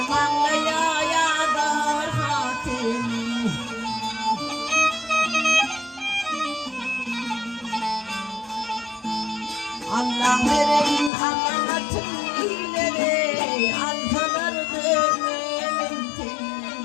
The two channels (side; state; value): right; drops out; at 11.1 s